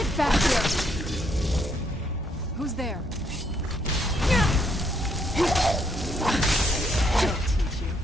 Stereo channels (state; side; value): normal; both; correlation 0.72